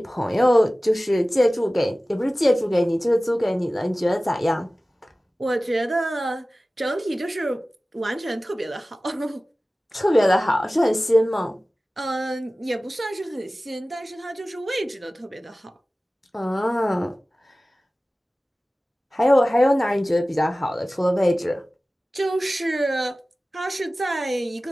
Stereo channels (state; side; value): normal; both; correlation 0.97